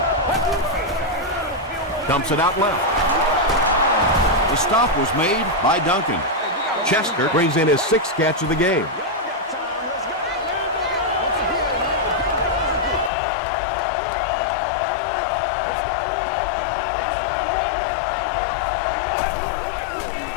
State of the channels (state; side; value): drops out; right; at 13.1 s